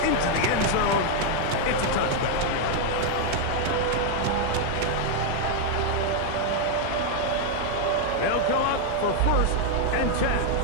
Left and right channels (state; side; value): different; both; correlation 0.00